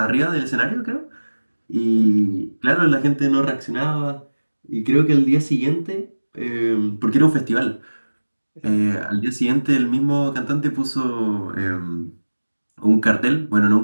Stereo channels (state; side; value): inverted; both; correlation -1.00